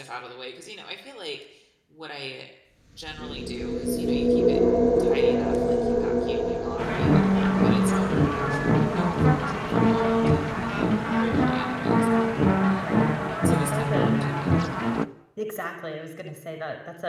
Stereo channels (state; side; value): identical; both; correlation 1.00